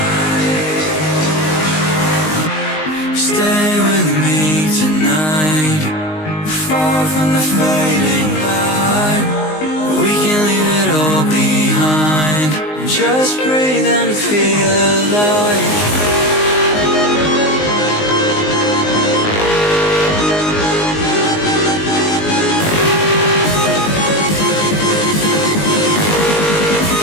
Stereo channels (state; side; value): late; right; 19 ms